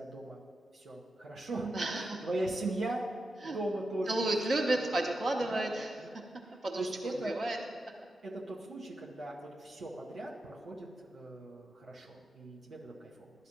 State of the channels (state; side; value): normal; both; correlation 0.88